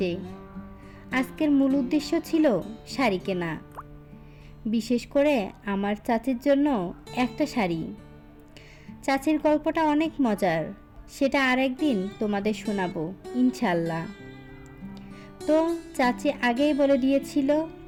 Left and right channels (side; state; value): both; identical; correlation 1.00